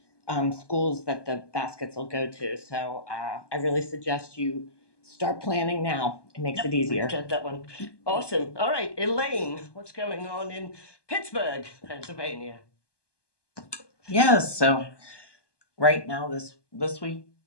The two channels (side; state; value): right; late; 1.2 ms